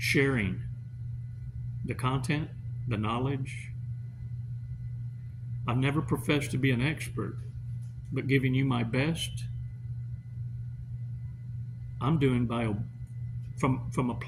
the content, the knowledge. I've never professed to be an expert, but giving you my best, I'm doing from a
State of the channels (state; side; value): identical; both; correlation 1.00